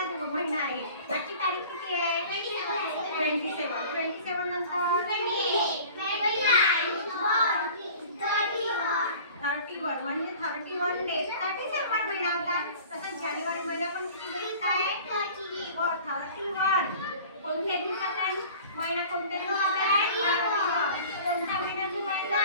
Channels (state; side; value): inverted; both; correlation -0.44